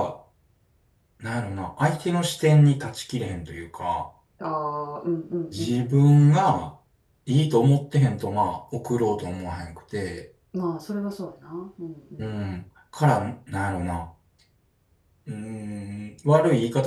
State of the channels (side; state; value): both; identical; correlation 1.00